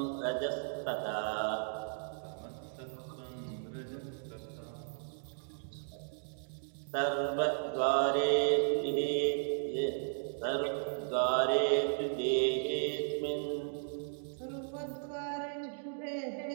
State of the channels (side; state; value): left; silent; digital silence